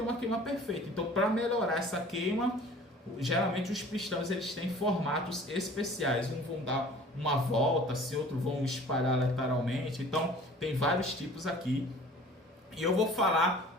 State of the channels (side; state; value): both; normal; correlation 0.47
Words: uma queima perfeita. Então, para melhorar essa queima, geralmente os pistões eles têm formatos especiais, uns vão dar uma volta, se outros vão espalhar lateralmente. Então, tem vários tipos aqui. E eu vou